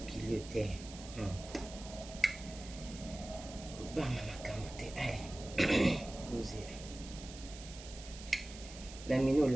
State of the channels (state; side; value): noise; right; hiss, 14 dB below the sound